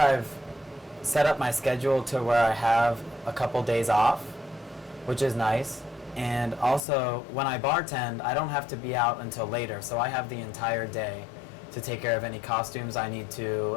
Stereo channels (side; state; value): right; drops out; at 6.8 s